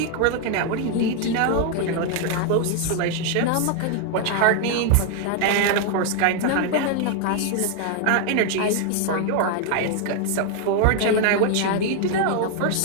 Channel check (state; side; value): different; both; correlation 0.01